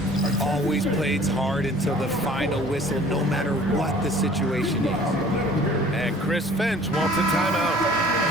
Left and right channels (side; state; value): both; normal; correlation 0.50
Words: Always plays hard until the final whistle, no matter what the situation is. And Chris Finch wants a timeout.